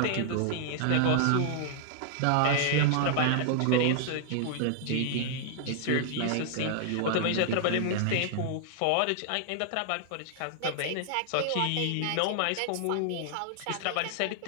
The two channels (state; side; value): different; both; correlation -0.01